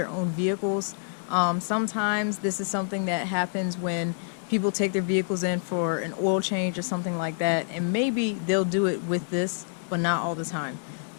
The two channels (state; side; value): silent; right; digital silence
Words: own vehicles. Sometimes this is something that happens when people take their vehicles in for an oil change or something like that, and maybe they'll do it with this, but not all the time.